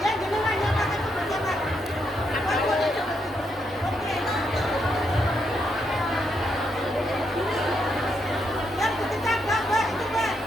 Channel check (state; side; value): normal; both; correlation 0.79